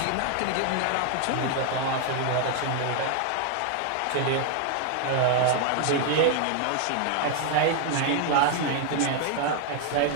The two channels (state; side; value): different; both; correlation 0.00